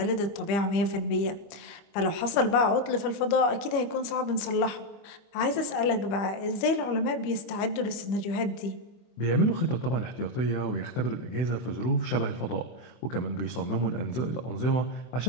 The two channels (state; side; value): late; right; 25 ms